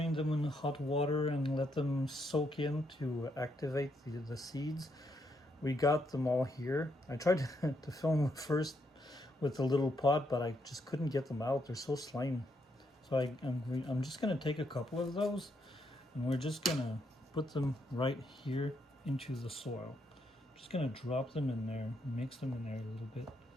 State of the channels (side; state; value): both; normal; correlation 0.77